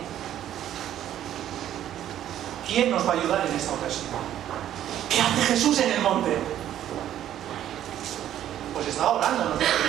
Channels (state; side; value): quieter; left; 11.5 dB